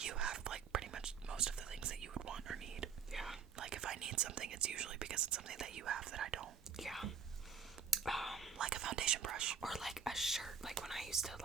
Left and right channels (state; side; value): quieter; left; 6.3 dB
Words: have, like, pretty much most of the things that you would want or need. Yeah. Like, if I need something, it's usually because it's something that you have that I don't. Yeah. Like a foundation brush. Or like a shirt, like when I used to,